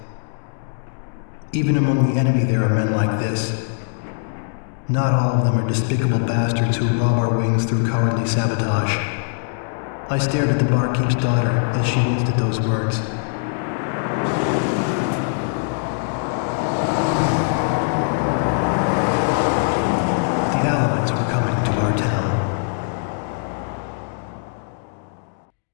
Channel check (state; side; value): silent; right; digital silence